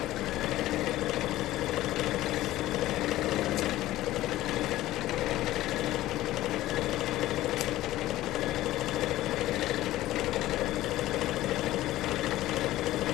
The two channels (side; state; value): right; quieter; 15.6 dB